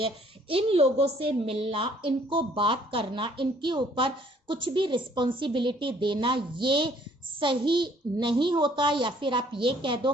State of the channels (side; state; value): both; normal; correlation 0.61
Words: इन लोगों से मिलना, इनको बात करना, इनके ऊपर कुछ भी रिस्पॉन्सिबिलिटी देना ये सही नहीं होता, या फिर आप ये कह दो